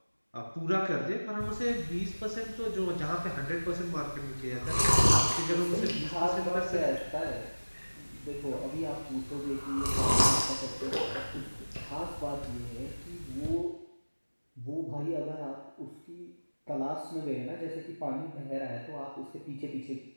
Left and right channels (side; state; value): both; inverted; correlation -1.00